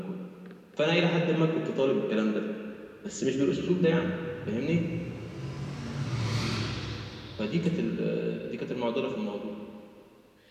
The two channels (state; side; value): identical; both; correlation 1.00